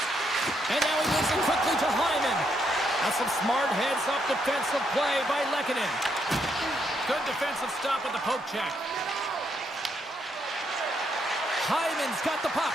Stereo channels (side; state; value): both; normal; correlation 0.76